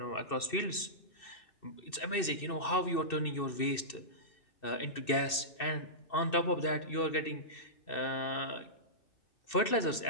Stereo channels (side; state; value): right; late; 2.6 ms